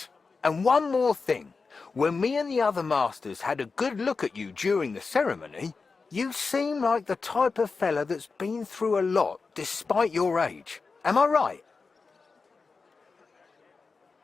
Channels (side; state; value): right; quieter; 4.5 dB